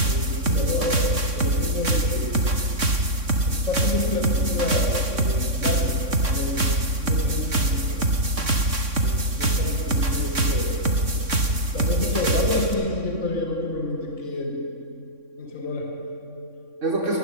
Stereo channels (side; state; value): left; late; 3.6 ms